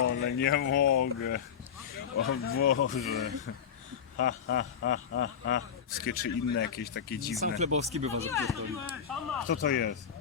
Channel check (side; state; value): right; quieter; 7.7 dB